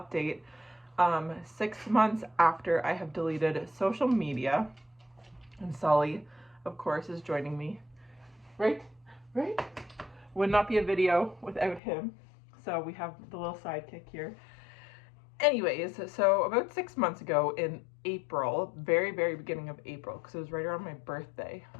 6 months after I have deleted social media, and Sully of course is joining me. Right? Would not be a video without him. So we have the little sidekick here. Anyways, so about 6 months ago in April, very beginning of April, because it was right around my birthday,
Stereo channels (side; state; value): right; drops out; at 11.8 s